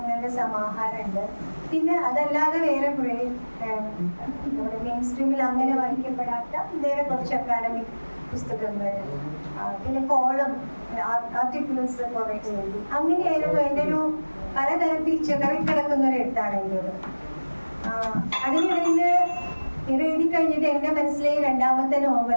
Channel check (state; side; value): inverted; both; correlation -1.00